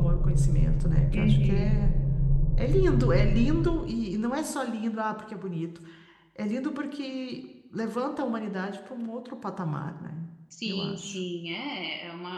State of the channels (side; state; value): both; identical; correlation 1.00